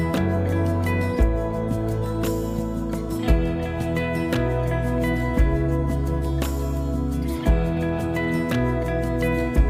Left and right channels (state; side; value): identical; both; correlation 1.00